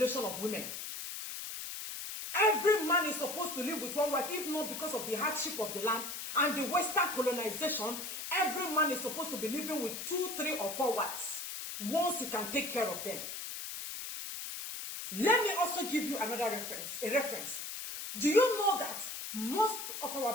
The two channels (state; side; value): noise; left; hiss, 7 dB below the sound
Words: of women. Every man is supposed to live with 1 wife, if not because of the hardship of the land and the Western colonization. Every man is supposed to be living with 2, 3, or 4 wives once he can take care of them. Let me also give you another reference. Do you know that most of our